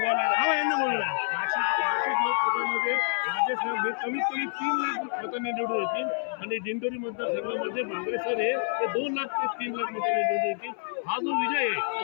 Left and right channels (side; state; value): right; silent; 59 dB below the other